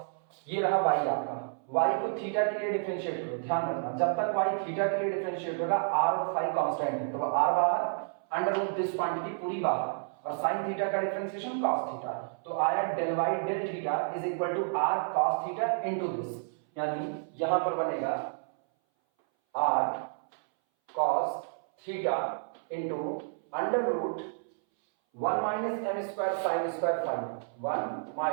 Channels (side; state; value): left; silent; 57 dB below the other